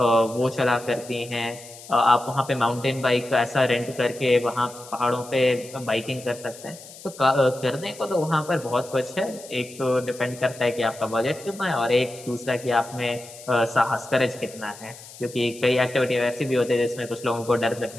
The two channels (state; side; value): noise; left; hiss, 17 dB below the sound